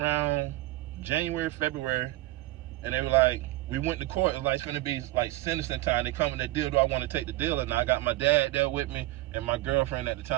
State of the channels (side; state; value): left; quieter; 17.7 dB